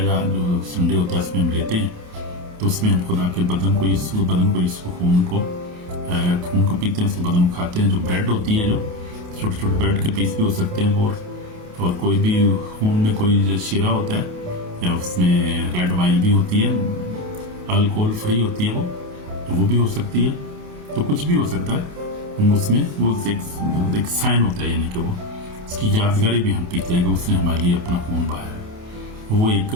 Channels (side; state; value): left; late; 28 ms